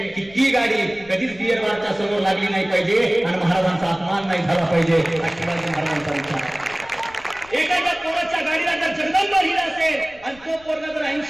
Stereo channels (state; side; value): noise; left; rumble, 25 dB below the sound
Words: की ती गाडी कधीच बियर बारच्या समोर लागली नाही पाहिजे आणि महाराजांचा अपमान नाही झाला पाहिजे. हा शिवाजी महाराजांचा विचार आहे. एखाद्या पोराच्या गाडीला जर जगदंब लिहिलं असेल आणि तो पोरगा जर